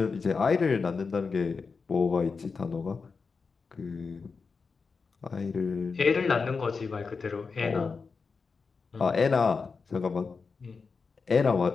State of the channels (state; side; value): quieter; right; 4.9 dB